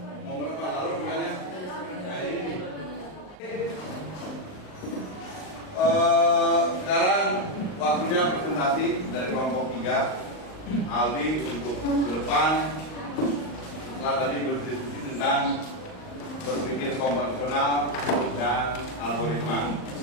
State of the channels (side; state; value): right; late; 39 ms